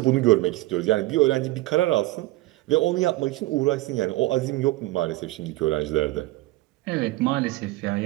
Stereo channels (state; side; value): quieter; left; 18.8 dB